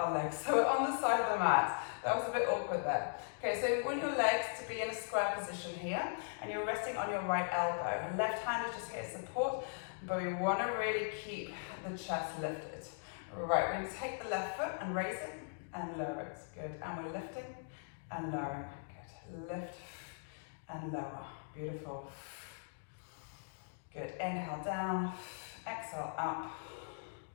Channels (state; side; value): silent; right; digital silence